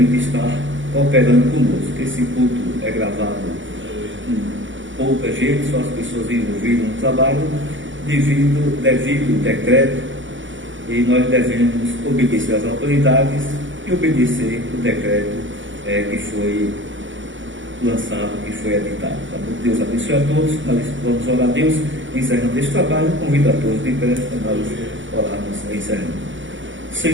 que está cooperando conosco. Esse culto é gravado com pouca gente, só as pessoas envolvidas no trabalho, devido ao decreto, e nós devemos obedecer às autoridades e obedecer o decreto que foi lançado, que foi editado. Tá bom? Deus abençoe a todos. Nós vamos orar a Deus encerrando este trabalho. Convido a todos de pé para nós orarmos encerrando.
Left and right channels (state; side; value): late; left; 0.56 ms